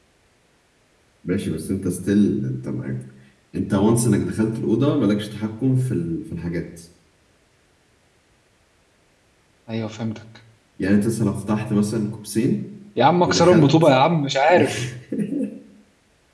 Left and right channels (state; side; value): identical; both; correlation 1.00